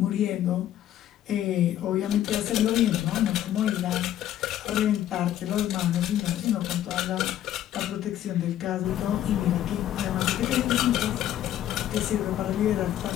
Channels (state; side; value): quieter; right; 11.9 dB